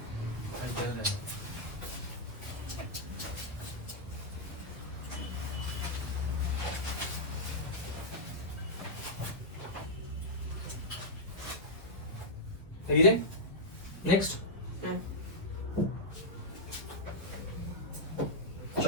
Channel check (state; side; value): normal; both; correlation -0.08